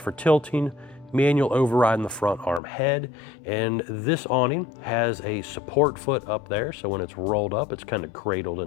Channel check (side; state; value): right; drops out; at 2.6 s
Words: tilting, manual override in the front arm head, and this awning has a support foot up there, so when it's rolled up, it's kind of cradled